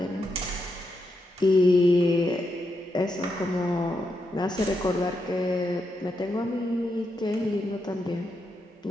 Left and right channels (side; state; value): both; normal; correlation 0.83